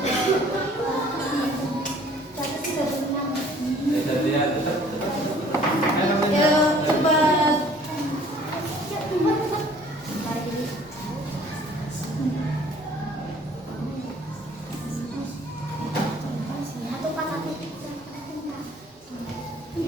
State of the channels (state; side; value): normal; both; correlation 0.55